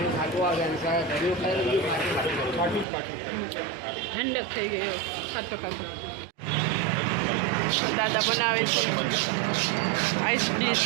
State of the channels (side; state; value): left; drops out; at 2.9 s